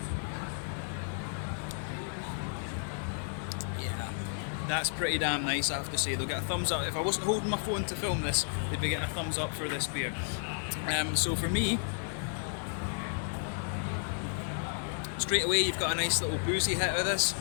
Yeah, that's pretty damn nice, I have to say. They'll get a thumbs up. If I wasn't holding my phone to film this, they'd be getting a thumbs up for this beer. So for me, straight away you've got a nice little boozy hit of this.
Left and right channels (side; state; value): right; silent; 55 dB below the other